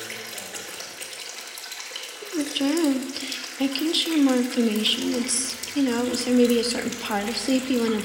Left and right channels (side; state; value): both; identical; correlation 1.00